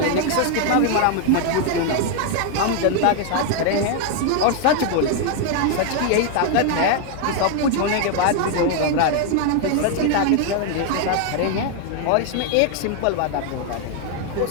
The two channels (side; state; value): both; different; correlation 0.00